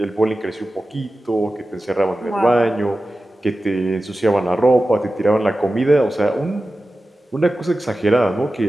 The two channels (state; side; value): normal; both; correlation 0.94